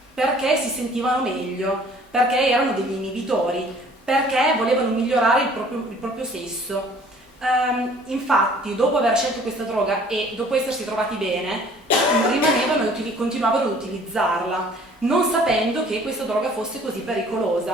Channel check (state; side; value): normal; both; correlation 0.54